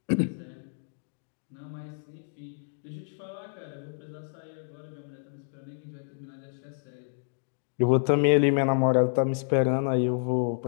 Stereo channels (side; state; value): right; silent; digital silence